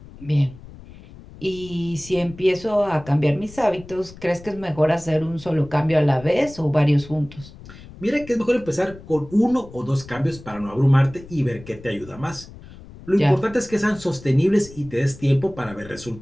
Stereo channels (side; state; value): left; noise; rumble, 18 dB below the sound